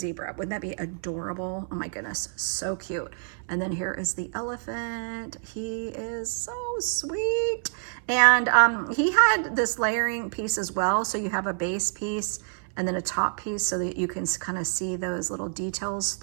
Wouldn't that be adorable? Oh my goodness, so cute. And then here is the elephant. He is so sweet. And he had this layering piece as well. So you have a base piece and then a top piece so that you can kind of see those little details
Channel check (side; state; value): left; silent; 58 dB below the other